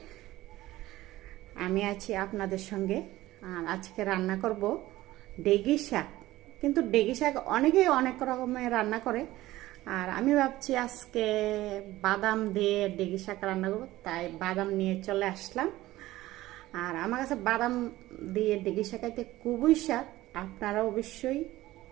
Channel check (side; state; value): left; quieter; 16.7 dB